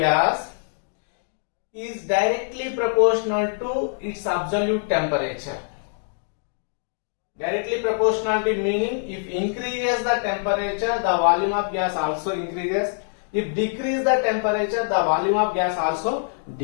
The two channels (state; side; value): silent; right; digital silence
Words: is directly proportional to its absolute temperature. Directly proportionality meaning, if increases the temperature, the volume of gas also increases. If decrease the temperature, the volume of gas also